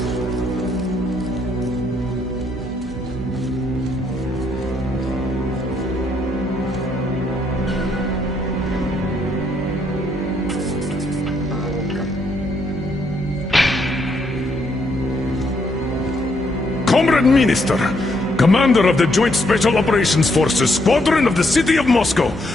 Comrade Minister, Commander of the Joint Special Operations Forces, Squadron of the City of Moscow,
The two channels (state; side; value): normal; both; correlation 0.73